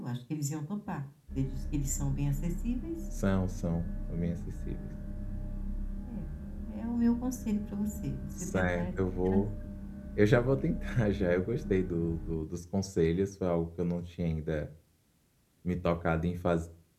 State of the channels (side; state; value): both; identical; correlation 1.00